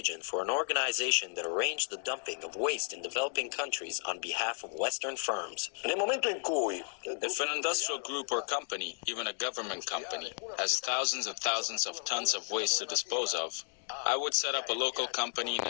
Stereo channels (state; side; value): silent; right; 56 dB below the other